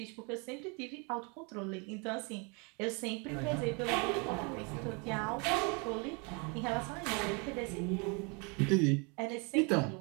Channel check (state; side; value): quieter; left; 32.6 dB